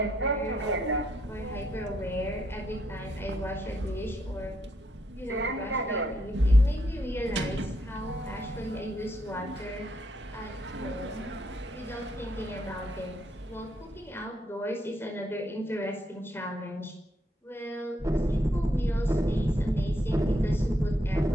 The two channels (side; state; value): both; normal; correlation 0.76